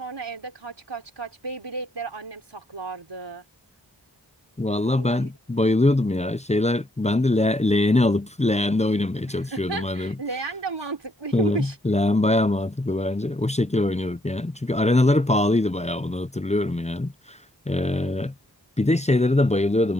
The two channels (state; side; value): normal; both; correlation 0.73